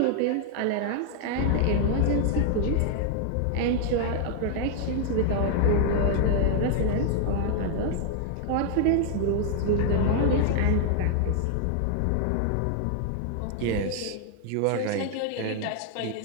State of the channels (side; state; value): both; different; correlation 0.00